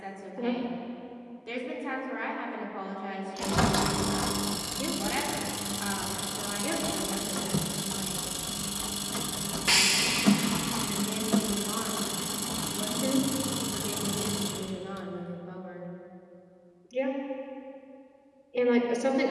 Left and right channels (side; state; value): both; identical; correlation 1.00